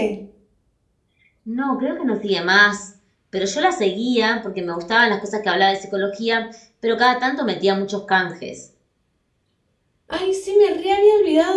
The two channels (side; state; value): both; identical; correlation 1.00